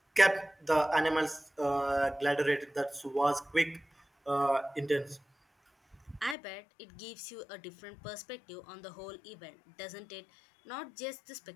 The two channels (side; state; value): right; drops out; at 6.4 s